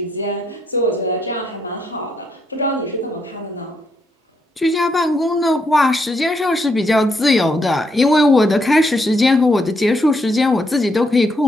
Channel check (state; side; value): normal; both; correlation 0.76